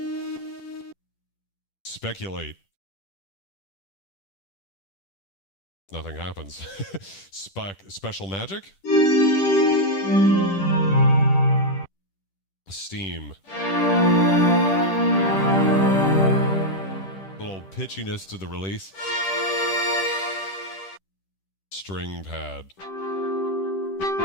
Speculate. Nothing happens. Special magic. Steam. Little pitchiness to the release. String pad.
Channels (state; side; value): late; right; 10 ms